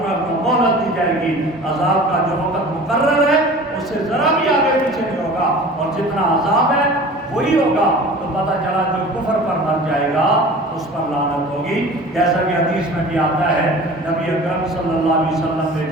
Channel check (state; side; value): normal; both; correlation 0.41